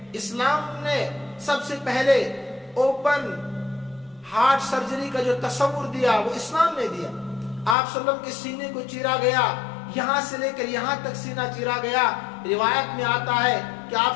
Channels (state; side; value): drops out; right; at 7.8 s